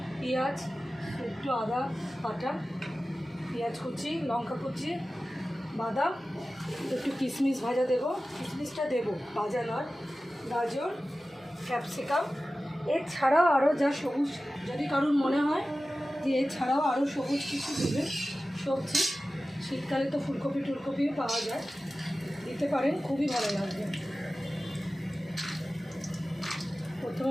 পেঁয়াজ, একটু আদা বাটা, পেঁয়াজ কুচি, লঙ্কা কুচি, বাদাম, একটু কিশমিশ ভাজা দেবো। কিশমিশটা দেবো, ভাজা নয়। গাজর, ক্যাপসিকাম, এছাড়াও আরও যা সবুজ, যদি কারোর মনে হয় যে এছাড়াও আরও সবুজ কিছু দেবে সবজি, শীতকালে তো ফুলকপি টুলকপিও পাওয়া যায়, দিতে পারেন, খুবই ভালো লাগবে।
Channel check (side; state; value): both; normal; correlation 0.95